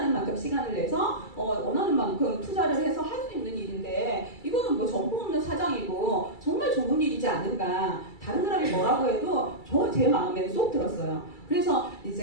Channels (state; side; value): late; right; 2.3 ms